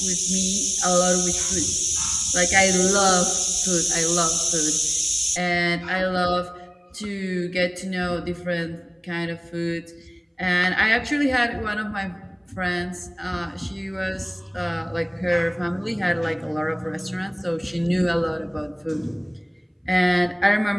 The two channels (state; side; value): identical; both; correlation 1.00